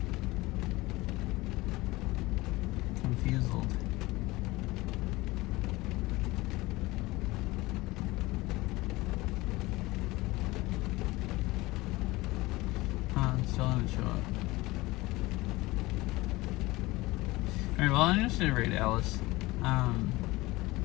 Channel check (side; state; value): right; quieter; 20.5 dB